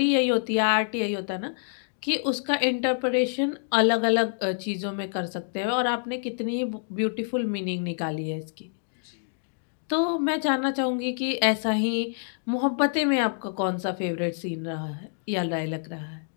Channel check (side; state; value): right; silent; digital silence